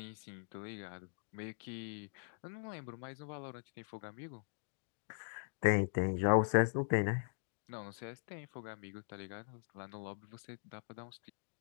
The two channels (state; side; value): silent; right; digital silence